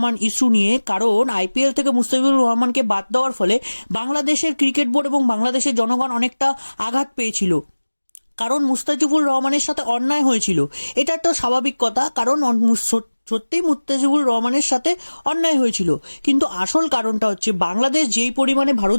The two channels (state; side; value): inverted; both; correlation -1.00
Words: ইস্যু নিয়ে। কারণ আইপিএল থেকে মুস্তাফিজুর রহমানকে বাদ দেওয়ার ফলে বাংলাদেশের ক্রিকেট বোর্ড এবং বাংলাদেশের জনগণ অনেকটা আঘাত পেয়েছিল, কারণ মুস্তাফিজুর রহমানের সাথে অন্যায় হয়েছিল। এটা একটা স্বাভাবিক কথা, কারণ সত্যিই মুস্তাফিজুর রহমানের সাথে অন্যায় হয়েছিল। কিন্তু আসল কারণটা হচ্ছে বাংলাদেশ যেই পরিমাণে